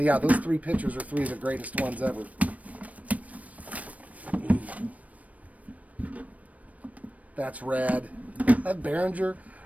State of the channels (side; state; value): left; late; 0.069 ms